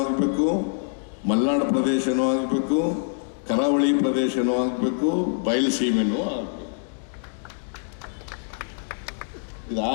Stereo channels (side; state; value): right; silent; digital silence